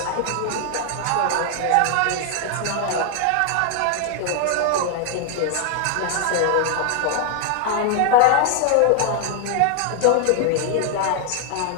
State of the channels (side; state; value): both; different; correlation 0.00